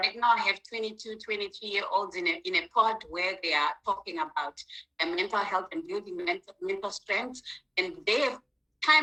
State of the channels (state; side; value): identical; both; correlation 1.00